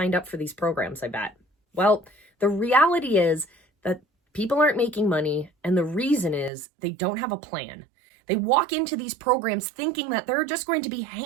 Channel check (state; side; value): drops out; left; at 6.5 s